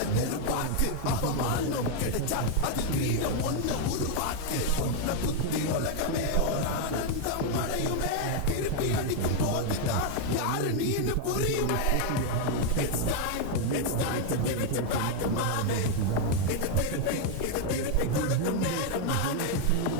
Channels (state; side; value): different; both; correlation 0.00